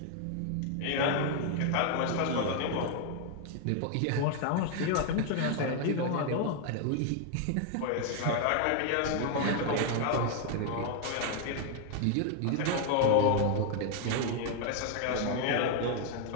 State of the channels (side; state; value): both; different; correlation 0.00